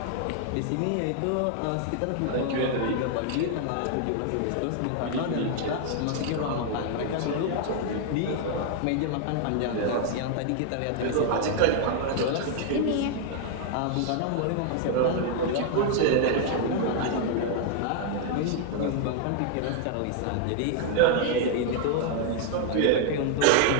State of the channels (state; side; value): different; both; correlation 0.00